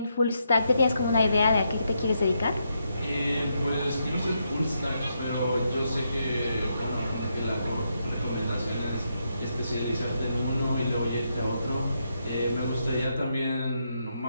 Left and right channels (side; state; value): both; inverted; correlation -0.80